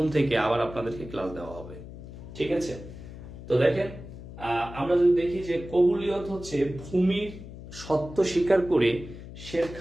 থেকে আবার আপনাদেরকে ক্লাস দেওয়া হবে। ঠিক আছে। তো দেখেন, আমরা যদি দেখি যে কবুলিয়ত হচ্ছে ভূমির সত্য স্বীকার করে শের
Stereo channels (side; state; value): left; noise; hum, 13 dB below the sound